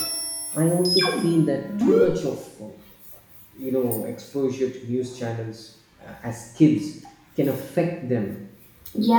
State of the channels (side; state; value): both; identical; correlation 1.00